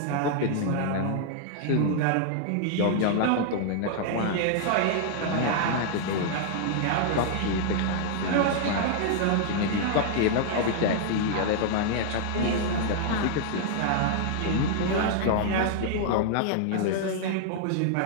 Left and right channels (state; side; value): different; both; correlation -0.01